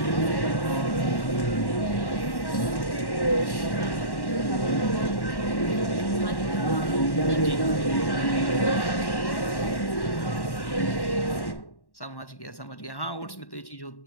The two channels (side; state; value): right; late; 1.1 ms